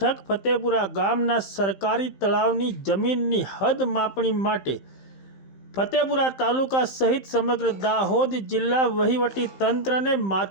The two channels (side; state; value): right; late; 15 ms